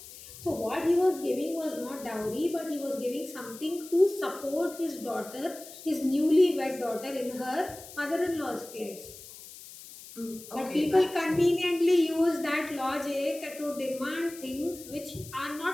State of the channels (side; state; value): left; noise; hiss, 16 dB below the sound